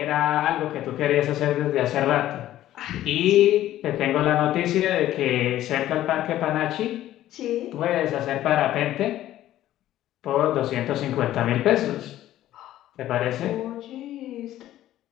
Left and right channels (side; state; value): right; quieter; 13.5 dB